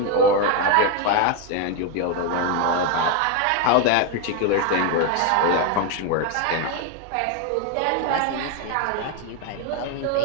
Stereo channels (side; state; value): both; different; correlation 0.02